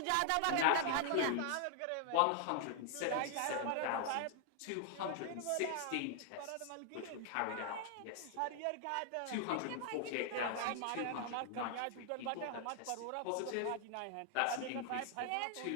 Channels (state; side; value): different; both; correlation 0.00